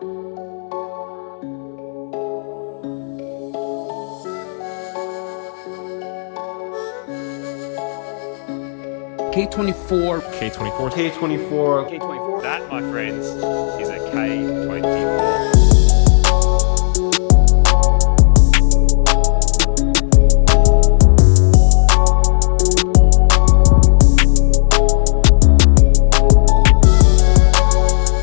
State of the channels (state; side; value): silent; right; digital silence